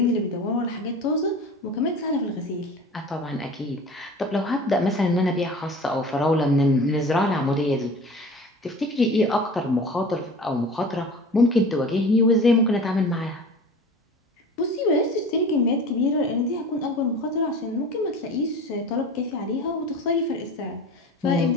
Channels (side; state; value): both; normal; correlation 0.38